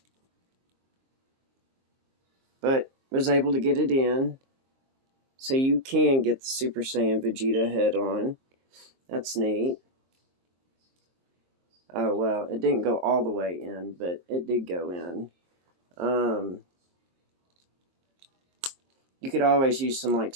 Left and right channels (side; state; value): left; late; 22 ms